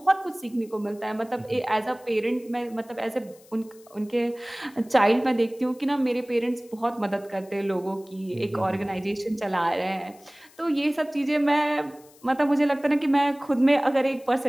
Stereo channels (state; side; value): noise; left; hiss, 26 dB below the sound